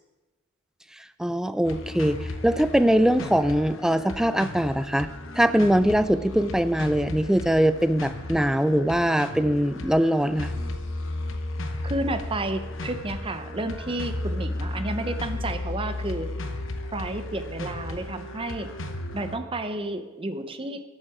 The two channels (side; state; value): both; normal; correlation 0.89